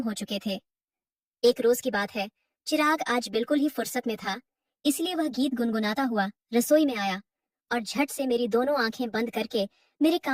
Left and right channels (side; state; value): both; identical; correlation 1.00